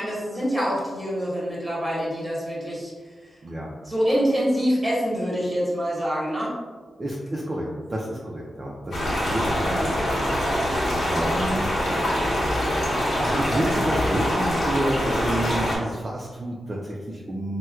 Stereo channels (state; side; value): normal; both; correlation 0.90